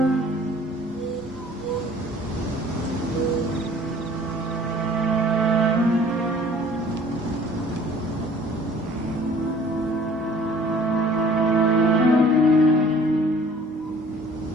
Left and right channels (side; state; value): both; normal; correlation 0.52